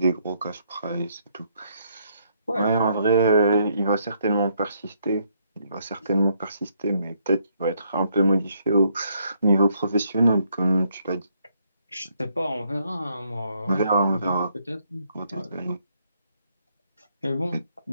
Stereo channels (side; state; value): both; inverted; correlation -0.72